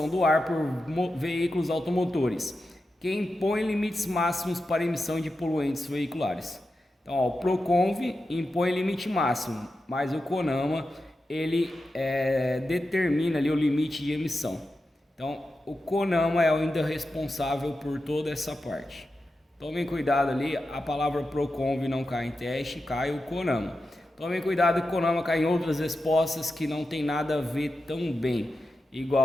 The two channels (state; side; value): normal; both; correlation 0.90